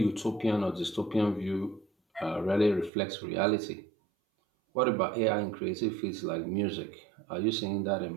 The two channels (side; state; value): left; drops out; at 2.9 s